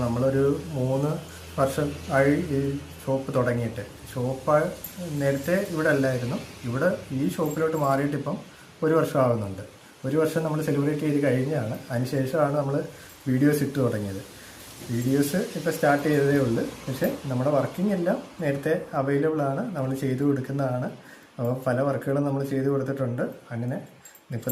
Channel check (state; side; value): identical; both; correlation 1.00